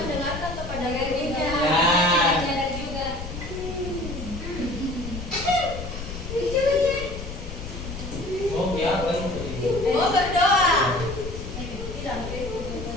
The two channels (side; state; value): left; noise; rumble, 8 dB below the sound